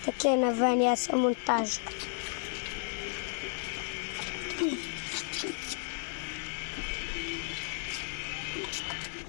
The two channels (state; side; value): silent; right; 56 dB below the other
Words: ואני אעשה מונטאז'.